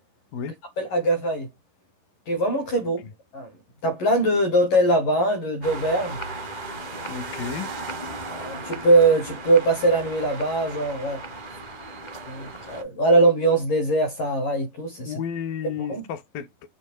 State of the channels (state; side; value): late; right; 11 ms